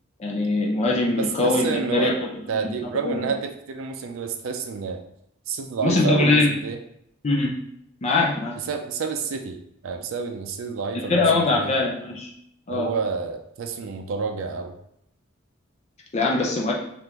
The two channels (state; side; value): normal; both; correlation 0.28